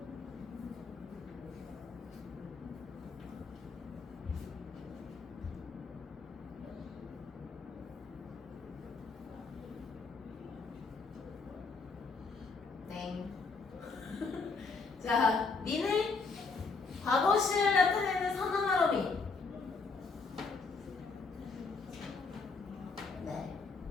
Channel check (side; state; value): right; quieter; 4.4 dB